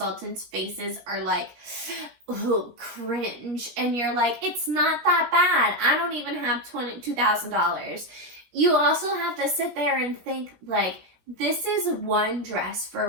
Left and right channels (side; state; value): left; late; 17 ms